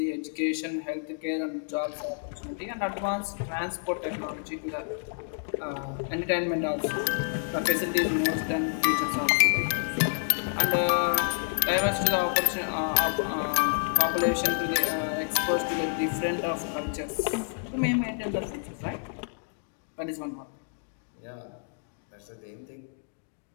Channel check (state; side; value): silent; right; digital silence